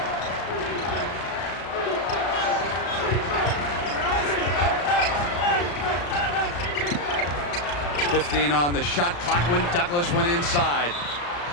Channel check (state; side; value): late; right; 34 ms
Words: .15 on the shot clock when Douglas went inside.